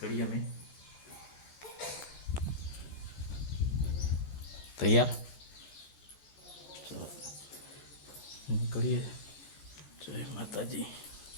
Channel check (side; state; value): right; late; 14 ms